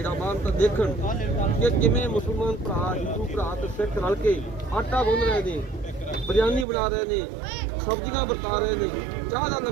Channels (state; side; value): drops out; left; at 6.7 s